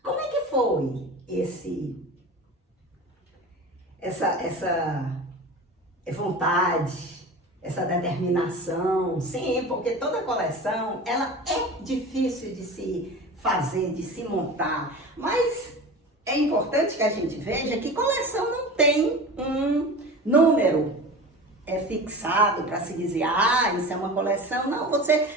Como é que foi essa vontade, essa determinação? Sim, porque toda coleção, ela é difícil de se fazer, de se montar, mas é importante que a gente veja que coleção não tem um número fixado para se dizer, isso é uma coleção. Não,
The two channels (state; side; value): normal; both; correlation 0.34